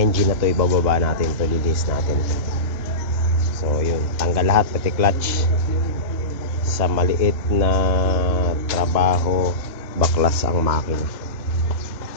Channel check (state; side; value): late; right; 2.1 ms